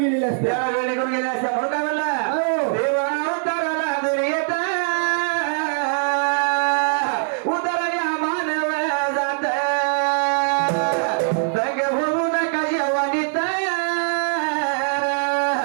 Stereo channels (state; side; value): silent; left; 60 dB below the other